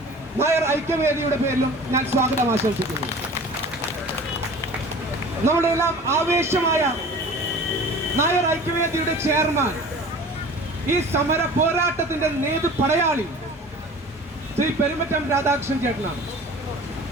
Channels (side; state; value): both; normal; correlation 0.42